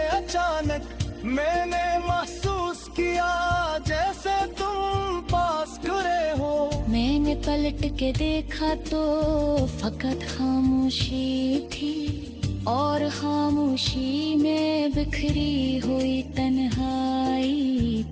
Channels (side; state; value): both; identical; correlation 1.00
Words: अचानक मैंने महसूस किया जैसे तुम पास खड़े हो। मैंने पलट के देखा तो फकत खामोशी थी, और खामोशी में बिखरी हुई तन्हाई